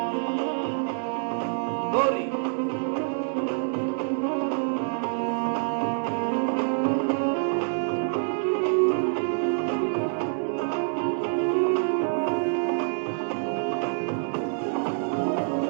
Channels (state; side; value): silent; left; digital silence